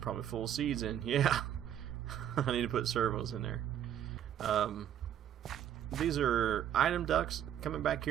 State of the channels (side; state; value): left; quieter; 10.5 dB